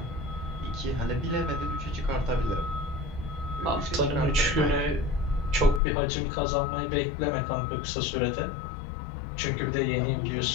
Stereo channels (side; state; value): right; drops out; at 5.8 s